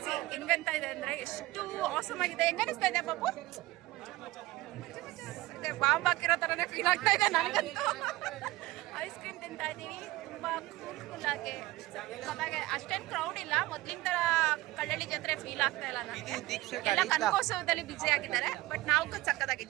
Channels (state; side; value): quieter; left; 18.8 dB